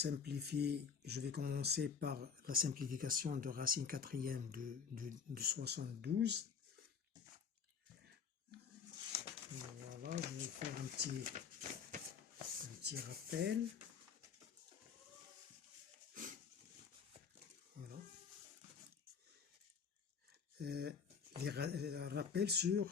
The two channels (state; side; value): quieter; right; 6.4 dB